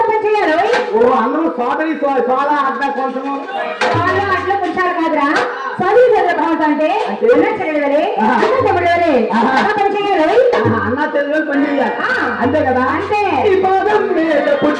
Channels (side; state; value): both; identical; correlation 1.00